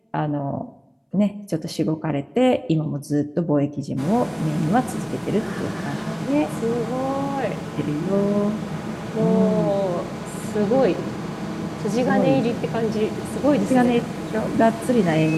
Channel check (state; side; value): identical; both; correlation 1.00